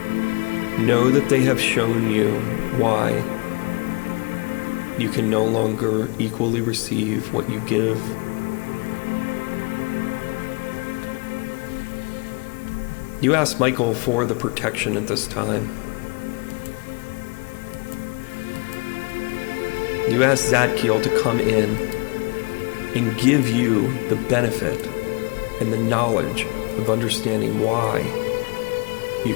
know that they have shown you why you can no longer equally receive what you give. You ask Michael for the protection at this time. You ask Zadkiel to come in and give you the benefit and the knowledge of understanding why you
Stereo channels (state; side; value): quieter; right; 30.3 dB